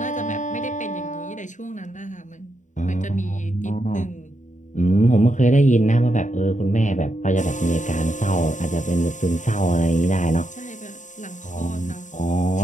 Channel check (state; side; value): late; right; 0.36 ms